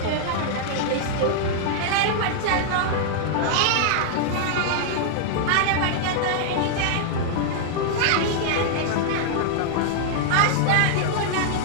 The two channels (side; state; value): both; different; correlation -0.01